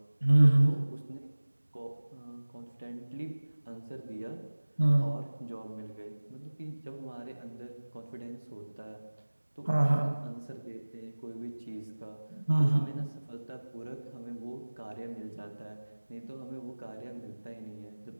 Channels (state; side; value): inverted; both; correlation -1.00